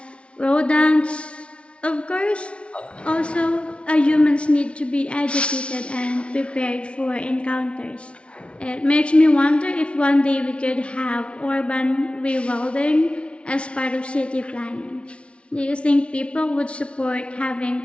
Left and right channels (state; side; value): late; right; 0.060 ms